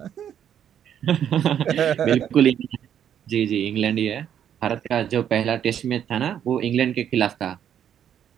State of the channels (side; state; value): left; quieter; 9.5 dB